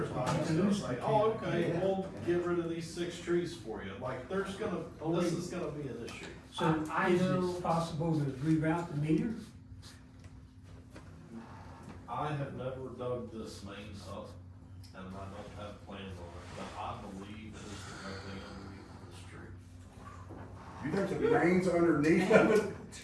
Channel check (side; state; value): both; identical; correlation 1.00